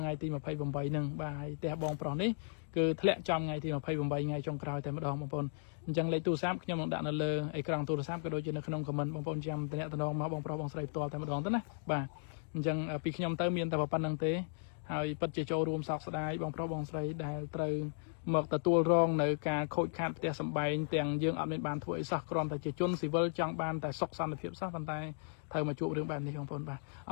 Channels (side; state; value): right; silent; digital silence